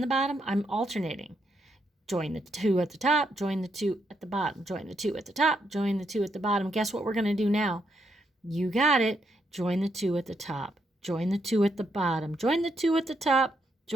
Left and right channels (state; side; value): normal; both; correlation 0.78